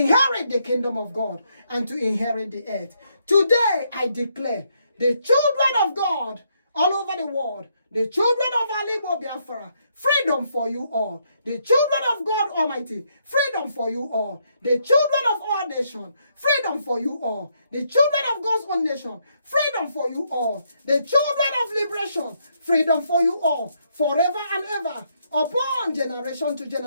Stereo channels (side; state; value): both; inverted; correlation -0.75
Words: the kingdom of God and to inherit the earth. Today I declare the children of God all over the world, the children of Igbo-Biafra, freedom for you all. The children of God Almighty, freedom for you all. The children of our nation, freedom for you all. The children of God's own nation, freedom for you all. The children of liberation, freedom for you all. Forever and ever, upon generation to